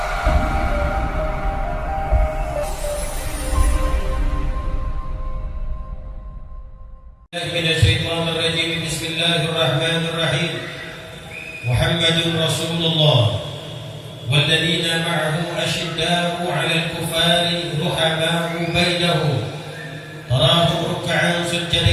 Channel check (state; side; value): identical; both; correlation 1.00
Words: Minasyaitonirrajim. Bismillahirrahmanirrahim. Muhammadun Rasulullah walladzina ma'ahu asyidda'u 'alal kufari ruhama'u bainahum tarahum ruk'an